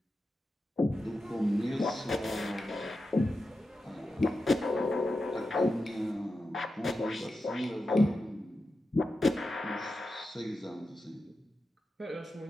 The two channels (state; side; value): normal; both; correlation 0.90